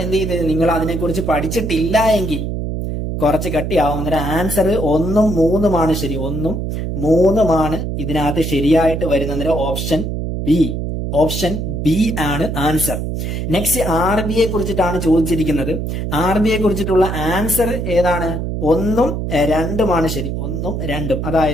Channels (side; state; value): right; noise; hum, 3 dB below the sound